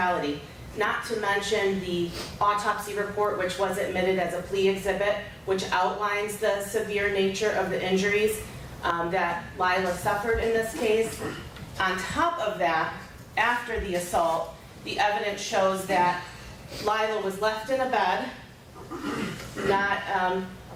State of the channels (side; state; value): both; identical; correlation 1.00